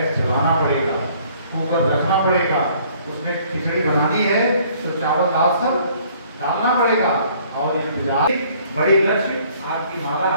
जलाना पड़ेगा, कुकर रखना पड़ेगा, उसमें खिचड़ी बनानी है तो चावल दाल सब डालना पड़ेगा और इंतजार। बड़े लक्ष्य आपकी माला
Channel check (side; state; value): both; inverted; correlation -0.59